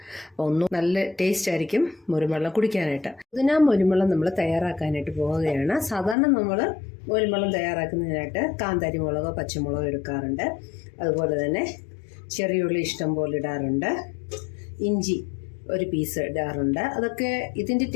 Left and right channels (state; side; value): drops out; right; at 6.2 s